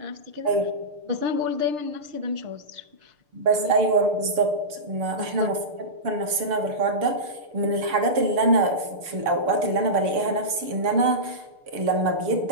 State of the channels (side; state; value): left; late; 6.7 ms